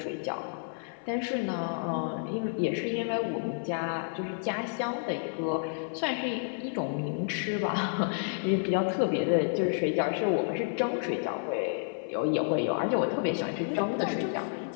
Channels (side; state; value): right; silent; 58 dB below the other